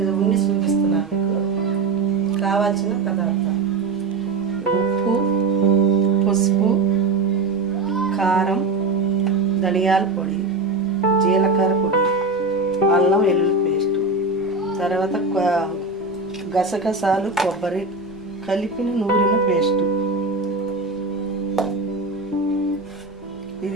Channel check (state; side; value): quieter; left; 3.5 dB